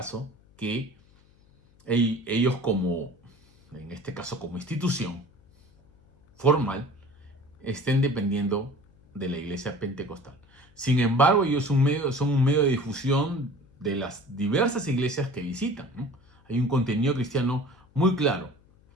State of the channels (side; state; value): left; noise; hum, 30 dB below the sound